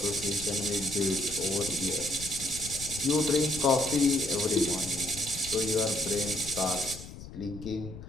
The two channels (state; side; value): noise; left; rumble, 13 dB below the sound